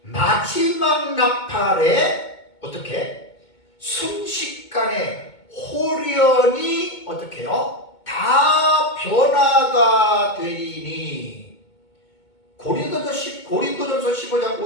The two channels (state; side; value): late; right; 2.2 ms